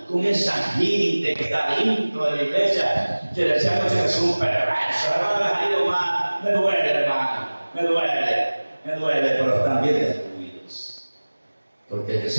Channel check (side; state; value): both; inverted; correlation -1.00